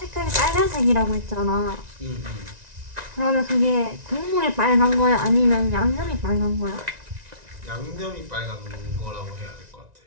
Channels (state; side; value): late; left; 1.9 ms